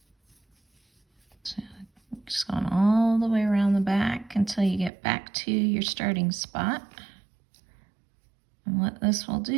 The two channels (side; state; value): left; drops out; at 4.9 s